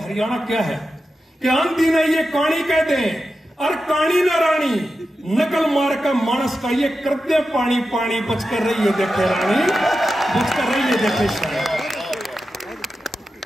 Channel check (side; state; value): both; normal; correlation 0.91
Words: क्या है, कि आंधी ने ये कहानी कह दे, और कहानी न रानी नकल मार का मानस का ये करते पानी पानी, बच कर रही है देखे रानी, बच कर रही है देखे शानी।